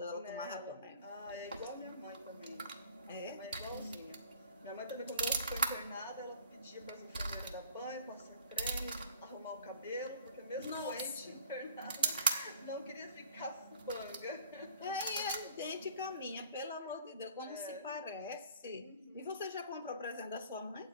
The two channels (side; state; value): both; inverted; correlation -0.49